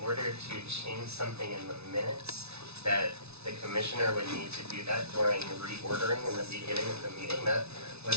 order to change something in the minutes, that the commissioner would need to do that during reordering in the beginning of the meeting? That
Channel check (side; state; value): left; late; 0.80 ms